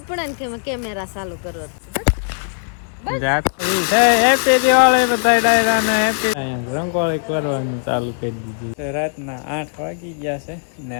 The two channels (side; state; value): right; silent; digital silence